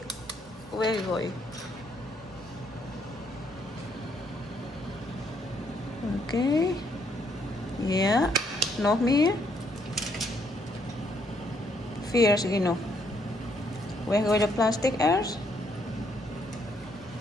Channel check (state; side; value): normal; both; correlation 0.71